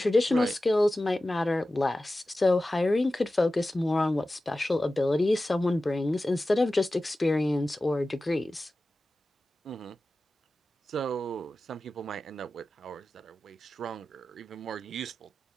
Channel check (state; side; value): normal; both; correlation 0.95